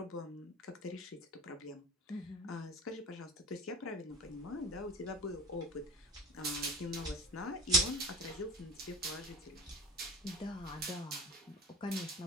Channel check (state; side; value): normal; both; correlation 0.34